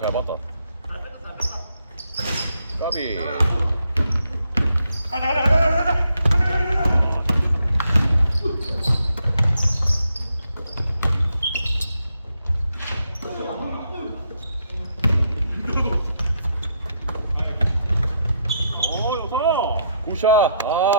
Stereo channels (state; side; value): inverted; both; correlation -0.77